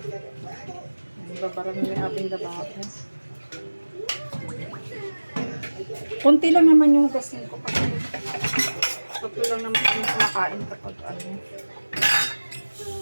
Babarang yung ating lababo. Kunti lang naman yung hugasin ko kasi tatlo lang naman kami kumakain kapag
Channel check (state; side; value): inverted; both; correlation -1.00